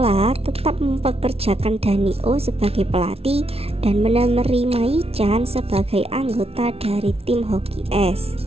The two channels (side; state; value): left; late; 0.29 ms